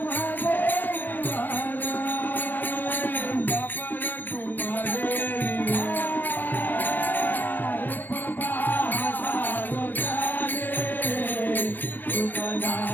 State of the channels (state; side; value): late; right; 0.089 ms